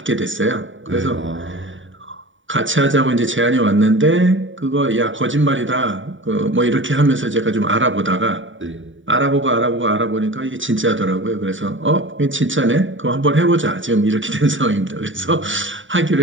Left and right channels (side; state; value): left; late; 0.56 ms